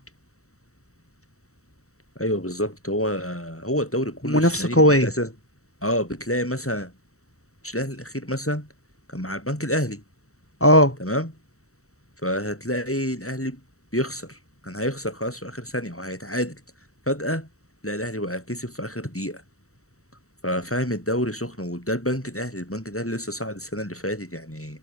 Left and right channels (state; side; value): late; right; 0.64 ms